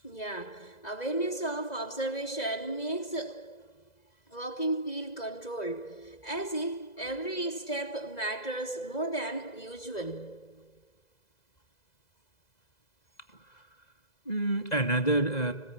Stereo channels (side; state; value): right; late; 2.0 ms